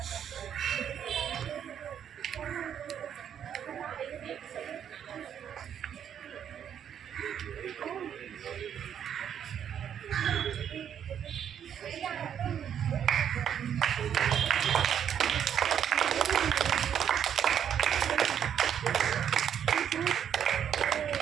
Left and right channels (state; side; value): quieter; left; 8.9 dB